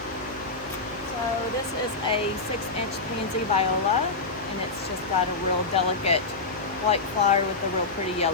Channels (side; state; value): right; quieter; 3.7 dB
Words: So this is a 6-inch pansy viola, and it's just got a real delicate white flower with a real pretty